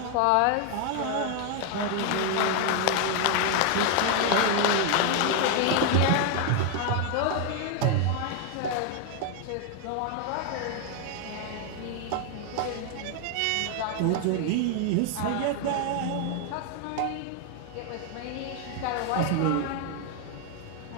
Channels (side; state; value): both; different; correlation 0.00